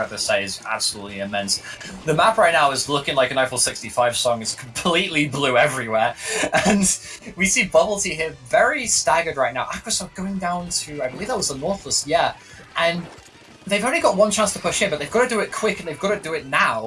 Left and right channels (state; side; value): identical; both; correlation 1.00